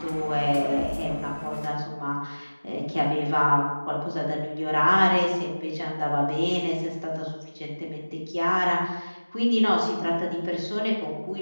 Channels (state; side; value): inverted; both; correlation -1.00